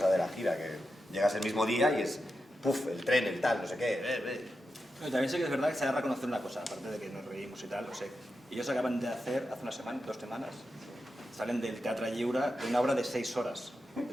de la gira, que llegas el mismo día y es, puf, el tren, el tal, no sé qué. Pero también sé que es verdad que se ha de reconocer una cosa, aparte de que nos reímos y tal, o sea, ellos acaban de hacer, hace una semana, 2 semanas, salen del Teatre Lliure de una obra de 6 horas, de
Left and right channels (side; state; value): both; normal; correlation 0.89